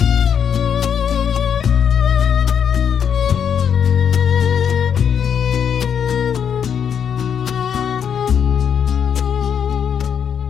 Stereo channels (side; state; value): right; quieter; 7.9 dB